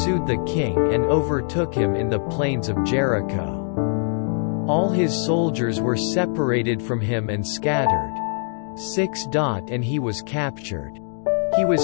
the king and overtook him in the plains of Jericho. All his soldiers were separated from him and scattered. 6. And he was captured. He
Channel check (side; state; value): right; silent; digital silence